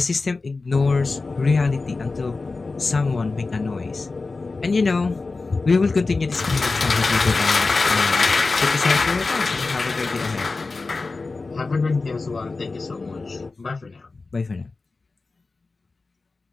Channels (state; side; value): quieter; right; 3.8 dB